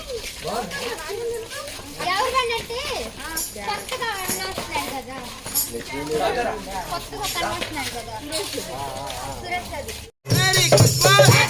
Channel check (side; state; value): both; identical; correlation 1.00